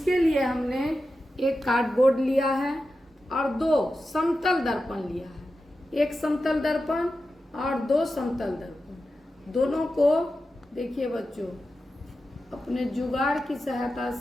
लिए हमने एक कार्डबोर्ड लिया है और दो समतल दर्पण लिया है। एक समतल दर्पण और दो समतल दर्पण, दोनों को देखिए बच्चों, अपने जुगाड़ की सहायता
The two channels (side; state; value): both; normal; correlation 0.91